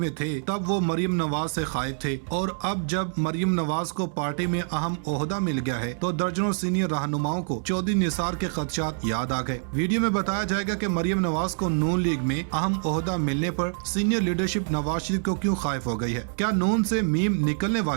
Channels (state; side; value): silent; left; 61 dB below the other